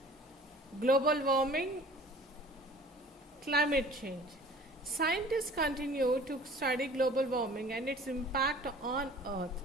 global warming, climate change. Scientists continue to study global warming and its impact on Earth.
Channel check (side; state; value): both; normal; correlation 0.47